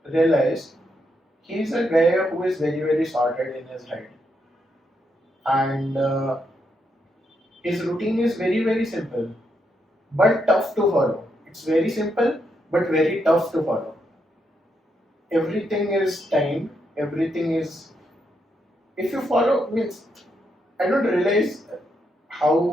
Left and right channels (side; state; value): both; normal; correlation 0.80